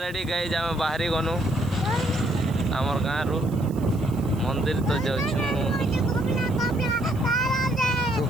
गाइज आम बाहरी गनु आमर गाँ रु मंदिर तो जाऊँ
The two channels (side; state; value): right; noise; hiss, 23 dB below the sound